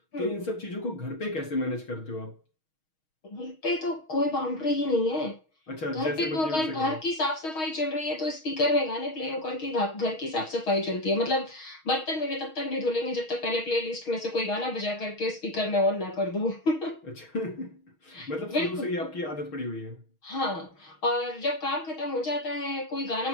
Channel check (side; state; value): right; late; 6.4 ms